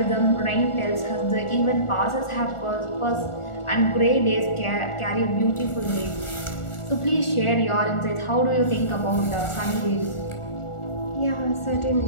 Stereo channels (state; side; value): late; right; 1.4 ms